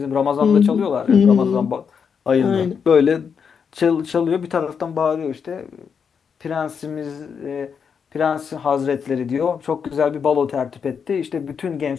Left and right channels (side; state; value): right; quieter; 6.6 dB